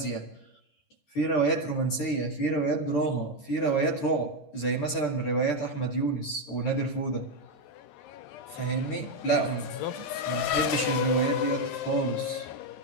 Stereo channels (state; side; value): late; right; 13 ms